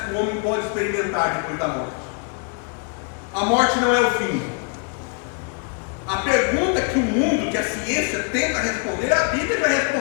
que o homem pode experimentar depois da morte. A morte não é o fim. A pergunta que o mundo, que a ciência tenta responder, a Bíblia já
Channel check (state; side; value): quieter; right; 38.0 dB